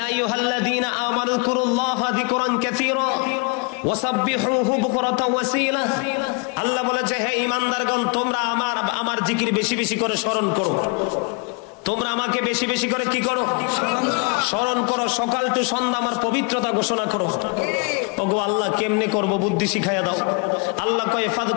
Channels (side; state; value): right; quieter; 31.2 dB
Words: আইয়ুহাল্লাযীনা আমানু যকুরুল্লাহা যিকরান কাসীরা ওয়াসাব্বিহুহু বুকরাতাও ওয়াসীলা। আল্লাহ বলেছে, হে ঈমানদারগণ, তোমরা আমার জিকির বেশি বেশি করে স্মরণ করো। তোমরা আমাকে বেশি বেশি করে কি করো? স্মরণ করো। সকাল টু সন্ধ্যা আমার পবিত্রতা ঘোষণা করো। ওগো আল্লাহ, কেমনে করব? বুদ্ধি শিখাইয়া দাও। আল্লাহ কয়